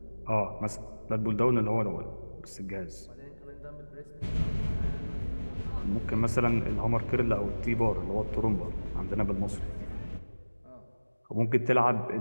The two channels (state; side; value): inverted; both; correlation -1.00